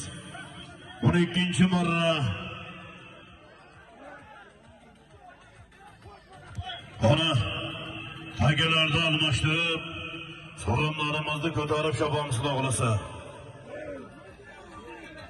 12-marra Ona akalarni almashtirib, so'rinlarimizni ko'tarib chopamiz xudo xolasa.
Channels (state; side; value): identical; both; correlation 1.00